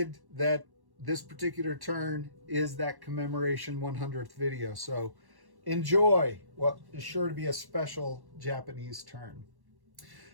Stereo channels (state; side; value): late; left; 1.1 ms